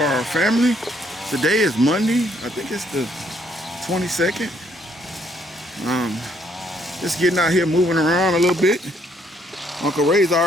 family? Today is Monday. I think it's the 22nd. Just getting out here, moving around a little bit. Uncle Ray's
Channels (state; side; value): normal; both; correlation 0.68